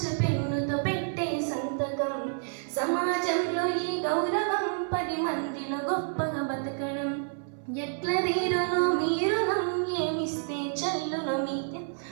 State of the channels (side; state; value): left; silent; 59 dB below the other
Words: పెన్నుతో పెట్టే సంతకం, సమాజంలో ఈ గౌరవం 10 మందిలో గొప్పగా బతకడం, ఎట్ల తీరునో మీరునం ఏమిస్తే చల్లును మీతే,